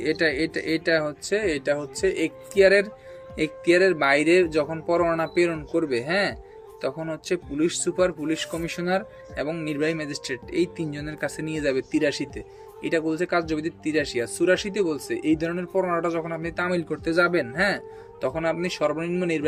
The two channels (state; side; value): identical; both; correlation 1.00